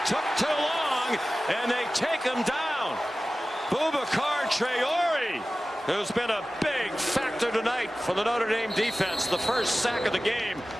took too long, and they take him down. Boubacar Traore, who's been a big factor tonight for the Notre Dame defense. The first sack of the game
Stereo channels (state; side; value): normal; both; correlation 0.96